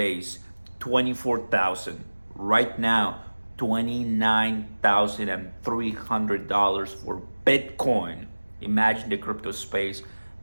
24,000. Right now, $29,300 for Bitcoin. Imagine the crypto space.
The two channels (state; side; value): inverted; both; correlation -1.00